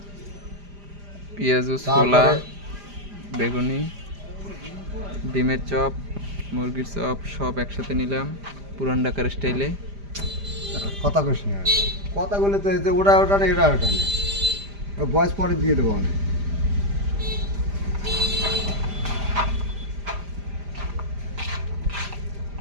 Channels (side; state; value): left; late; 5.0 ms